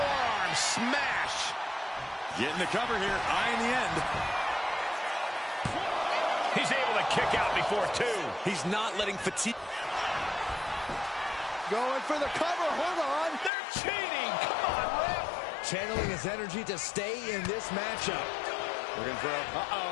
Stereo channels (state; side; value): drops out; right; at 13.5 s